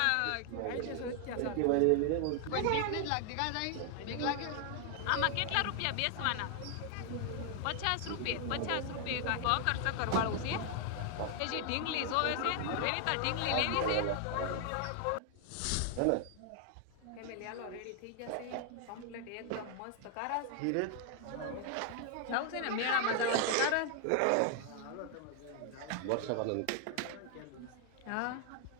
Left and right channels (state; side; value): different; both; correlation 0.00